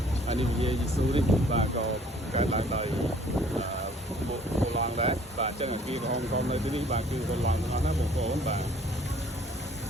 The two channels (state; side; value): normal; both; correlation 0.56